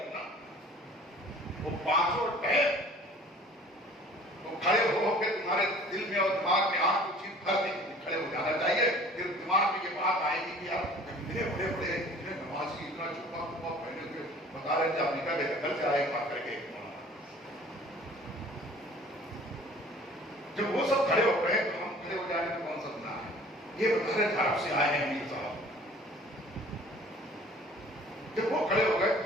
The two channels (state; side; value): normal; both; correlation 0.49